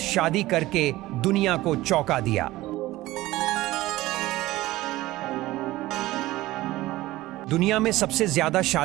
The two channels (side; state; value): left; quieter; 17.5 dB